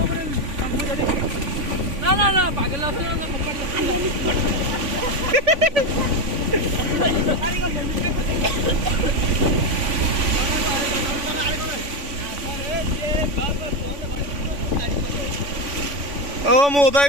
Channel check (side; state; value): left; late; 3.5 ms